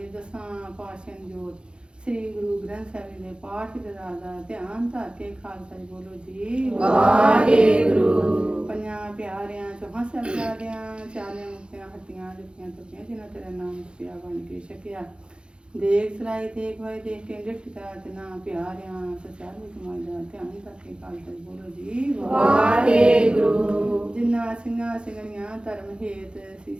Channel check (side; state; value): left; late; 0.054 ms